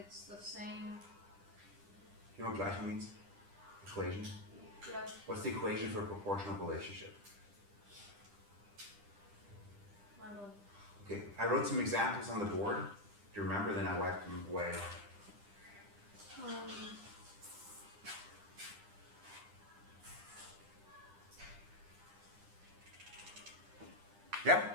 the same. You know what Gleichung means? Equation. Yeah. What's the equation for a proportional relationship? I don't. Okay, I wrote some examples on the board. Do you remember? Then I wiped them away.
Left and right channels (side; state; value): left; late; 9.9 ms